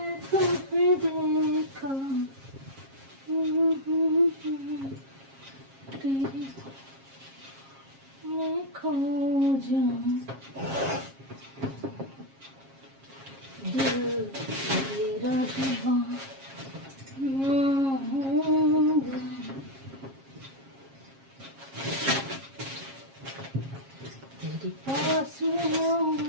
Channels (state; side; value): late; left; 7.4 ms